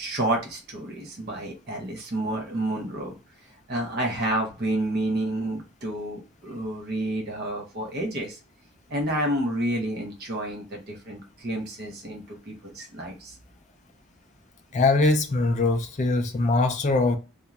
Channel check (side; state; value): both; normal; correlation 0.50